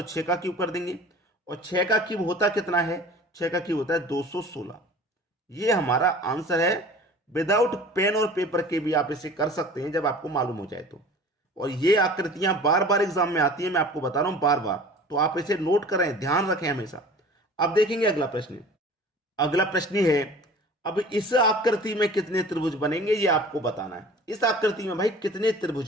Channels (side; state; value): both; normal; correlation 0.43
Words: 6 का क्यूब कर देंगे। और 6 का क्यूब होता कितना है, 6 का क्यूब होता है 216। ये हमारा आंसर है। विदाउट पेन और पेपर के भी आप इसे कर सकते हैं जब आपको मालूम हो जाए तो। और ये आकृतियां बार बार एग्जाम में आती हैं, मैं आपको बता रहा हूं बार बार, तो आप इसे नोट करें, ध्यान रखें हमेशा। अब देखेंगे अगला प्रश्न। अगला प्रश्न है, अब इस आकृति में कितने त्रिभुज बनेंगे ये आपको बताना है। इस आकृति में भाई कितने